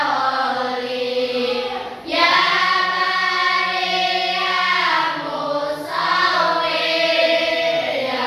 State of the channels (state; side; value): identical; both; correlation 1.00